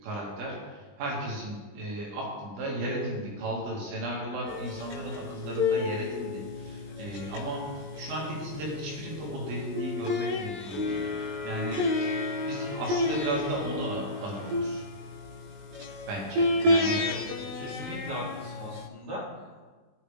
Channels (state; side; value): late; left; 20 ms